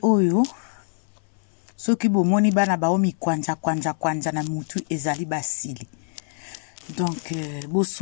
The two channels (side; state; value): right; silent; 59 dB below the other